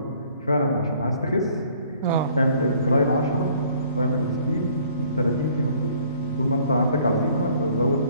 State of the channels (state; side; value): inverted; both; correlation -0.58